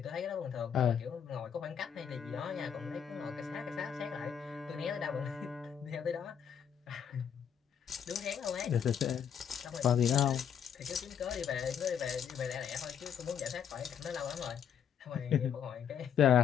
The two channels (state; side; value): quieter; right; 8.1 dB